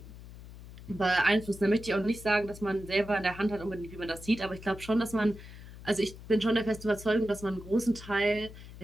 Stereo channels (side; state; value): left; noise; hum, 16 dB below the sound